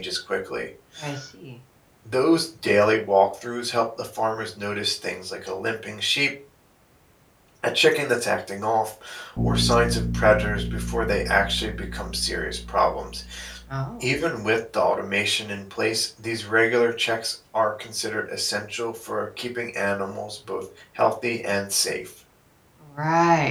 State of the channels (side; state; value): both; identical; correlation 1.00